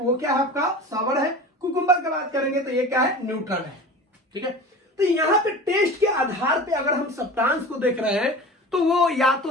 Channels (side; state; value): both; normal; correlation 0.35